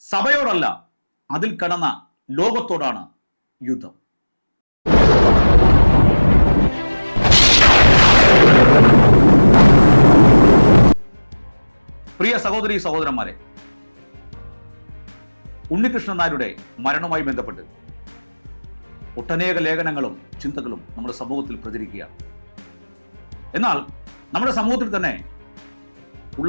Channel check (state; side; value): inverted; both; correlation -1.00